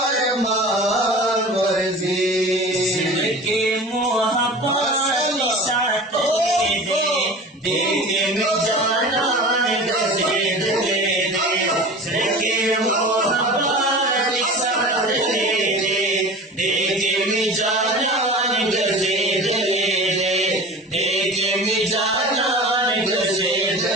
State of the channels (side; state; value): both; normal; correlation 0.36